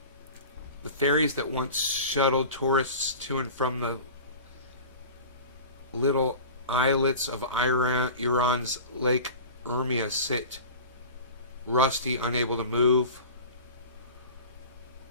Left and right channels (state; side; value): inverted; both; correlation -0.35